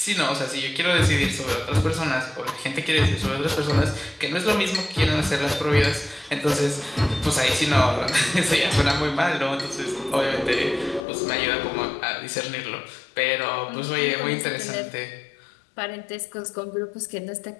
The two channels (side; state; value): right; drops out; at 11.0 s